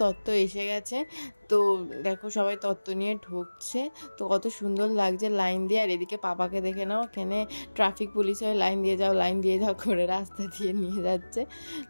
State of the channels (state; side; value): inverted; both; correlation -1.00